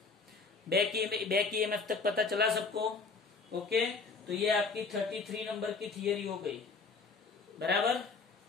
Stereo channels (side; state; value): right; quieter; 4.4 dB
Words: बैक ईएमएफ तक पता चला सबको? ओके, तो ये आपकी 33 नंबर की थियरी हो गई, बराबर।